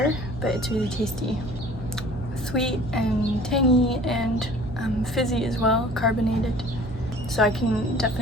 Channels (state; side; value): noise; right; hum, 12 dB below the sound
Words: but it's really tasty. Sweet and tangy and fizzy as well, carbonated. So I can